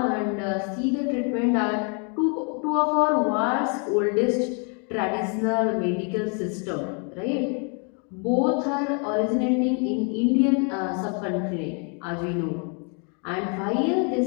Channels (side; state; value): right; quieter; 38.4 dB